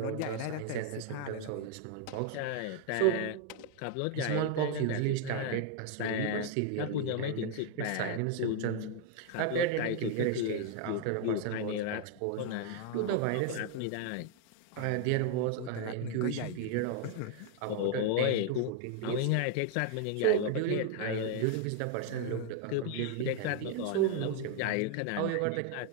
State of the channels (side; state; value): both; different; correlation 0.00